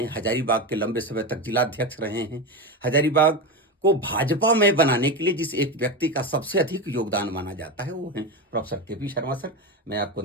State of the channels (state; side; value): normal; both; correlation 0.18